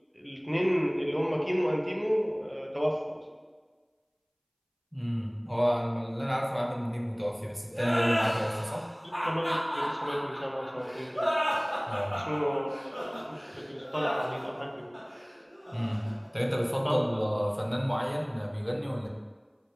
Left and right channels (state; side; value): identical; both; correlation 1.00